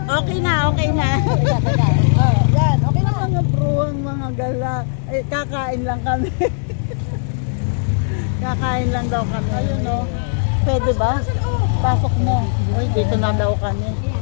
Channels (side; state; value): right; silent; digital silence